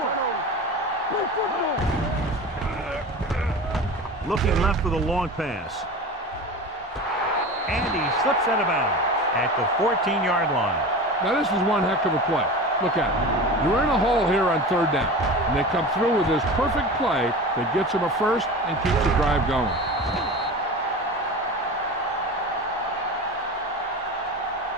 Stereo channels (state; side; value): normal; both; correlation 0.32